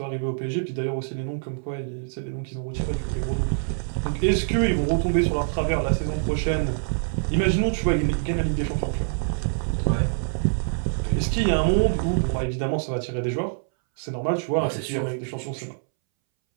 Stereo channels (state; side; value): silent; left; 62 dB below the other